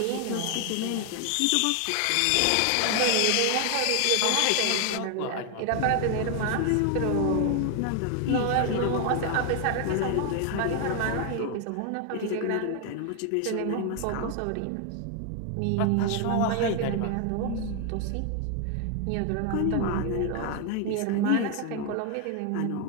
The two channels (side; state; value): both; different; correlation 0.00